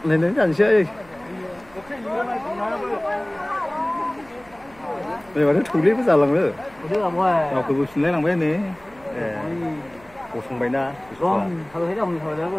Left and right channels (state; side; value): noise; right; hum, 26 dB below the sound